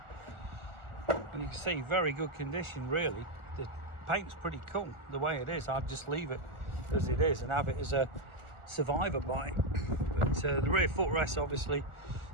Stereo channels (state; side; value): late; left; 1.4 ms